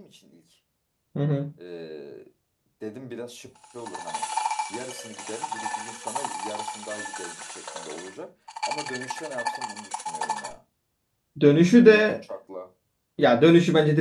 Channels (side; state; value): both; identical; correlation 1.00